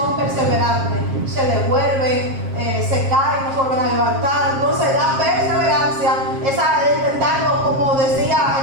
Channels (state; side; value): late; left; 7.4 ms